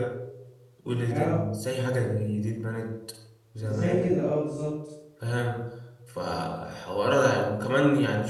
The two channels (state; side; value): identical; both; correlation 1.00